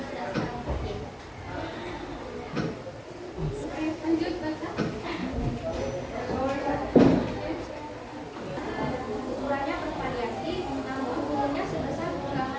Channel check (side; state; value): both; identical; correlation 1.00